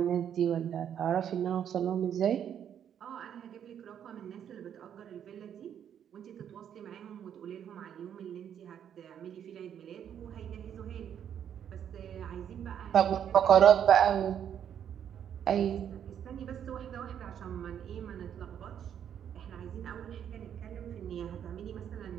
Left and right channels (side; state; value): left; quieter; 9.1 dB